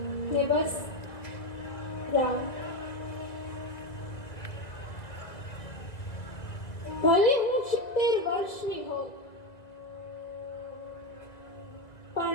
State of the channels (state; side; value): late; right; 1.8 ms